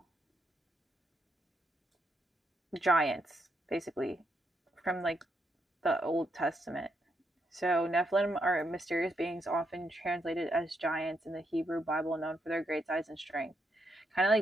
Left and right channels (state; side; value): normal; both; correlation 0.79